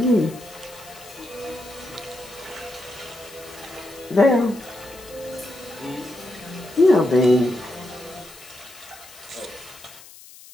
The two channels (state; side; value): noise; left; hiss, 19 dB below the sound